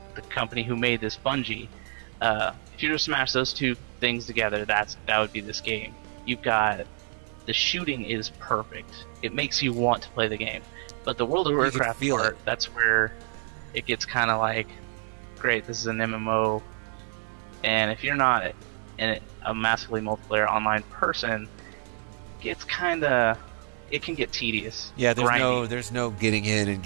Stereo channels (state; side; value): silent; left; 60 dB below the other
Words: the company who made this, Bungie. If you were to smash those two things together, that would be this game. You've got the shooting is perfect. It makes you want to play the game. But the World of Warcraft part, that's where it gets kind of like, great, this is an MMO. And if you're not a massively multiplayer online person, it can get tedious. Yeah, there's no getting in and